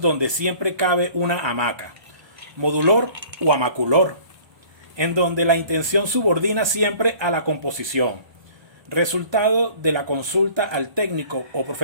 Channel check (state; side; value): late; left; 1.2 ms